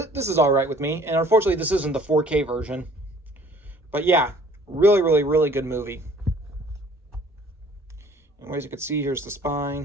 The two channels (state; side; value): normal; both; correlation 0.54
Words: is all right with me. And unfortunately, this isn't the 4K version. But yeah, really good movie. And as you can see, here's the